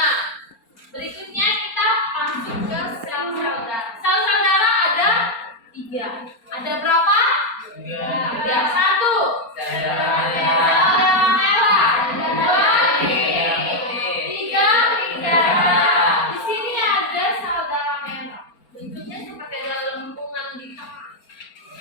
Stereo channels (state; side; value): late; right; 4.3 ms